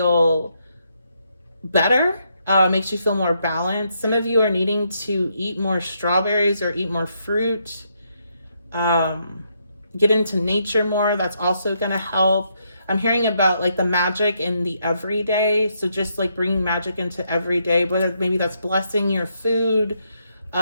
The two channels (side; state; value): both; inverted; correlation -0.77